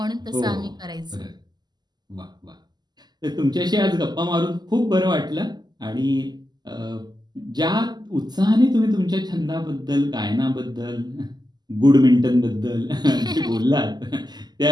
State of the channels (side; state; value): left; late; 0.20 ms